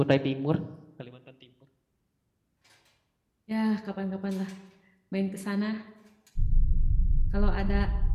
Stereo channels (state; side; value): identical; both; correlation 1.00